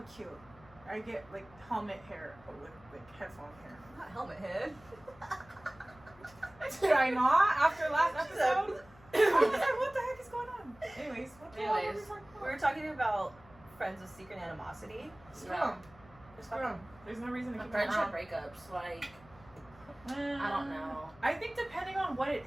cute. I get, like, helmet hair, but with, like, headphone hair. Not helmet head. Did I not? After last episode? I was like, what the heck is going on? Anyways, what the hell are we Anyways, talking We about? were talking about friends with secret animosity. Screw Yeah. them. Screw them. There's no reason to keep them Friendship around. breakups, like, I don't know. I think depending on what it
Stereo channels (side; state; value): left; noise; hum, 24 dB below the sound